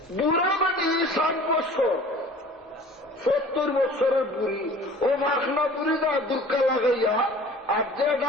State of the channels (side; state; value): both; normal; correlation 0.46